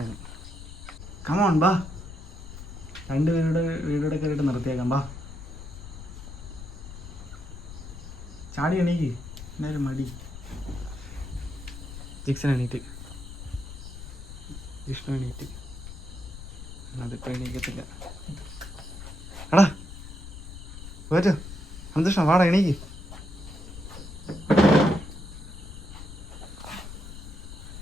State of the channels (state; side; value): noise; left; rumble, 12 dB below the sound